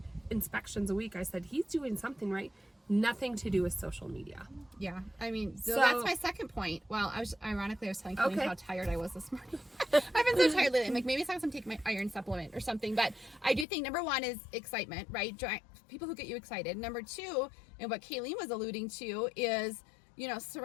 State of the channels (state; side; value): drops out; right; at 13.7 s